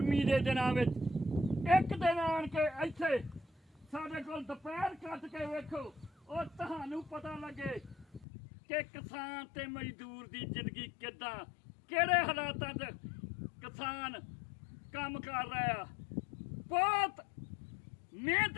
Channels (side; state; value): right; drops out; at 8.2 s